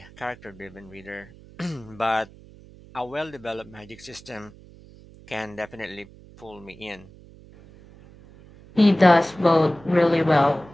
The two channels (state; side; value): noise; right; hum, 22 dB below the sound